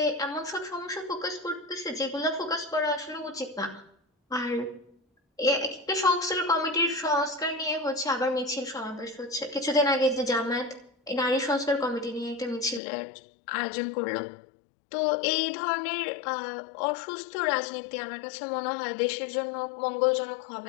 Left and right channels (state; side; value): drops out; right; at 12.8 s